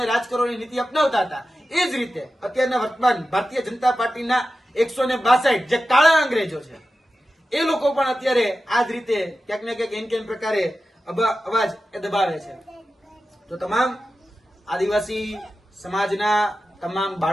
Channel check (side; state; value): both; normal; correlation 0.92